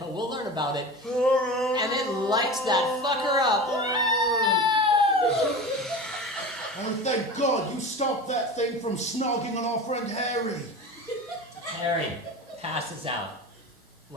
we'll learn about it. And it lights that fucker up. Oh, thank God you stopped that thing from snogging on our friend Harry. Harry passes out.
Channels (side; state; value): both; normal; correlation 0.31